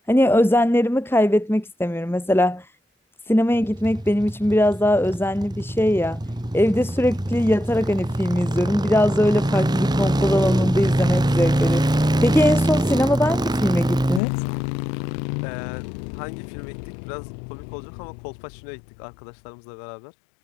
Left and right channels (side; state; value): right; drops out; at 14.2 s